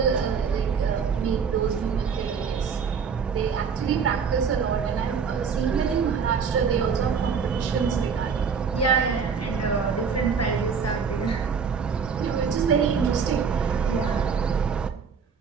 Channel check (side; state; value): left; quieter; 6.1 dB